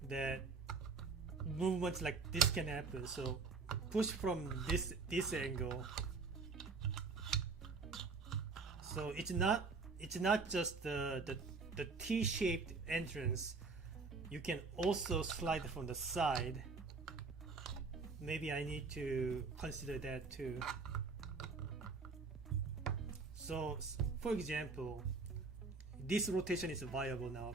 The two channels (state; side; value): quieter; left; 4.4 dB